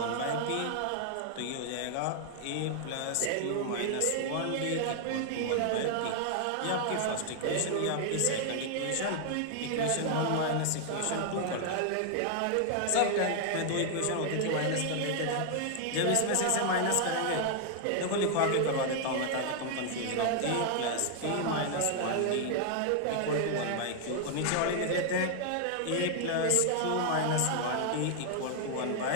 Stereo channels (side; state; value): both; different; correlation 0.00